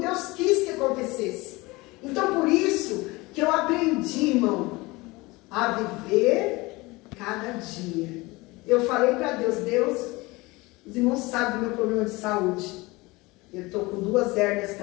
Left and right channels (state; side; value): quieter; right; 22.7 dB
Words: Deus quis que acontecesse. Então, por isso que eu aprendi, irmão, a viver cada dia. Eu falei para Deus, Deus, os irmãos sabem do meu problema de saúde. Eu estou com 2 hérnias